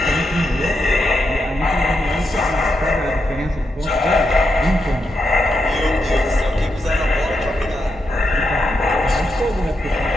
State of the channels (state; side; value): normal; both; correlation 0.84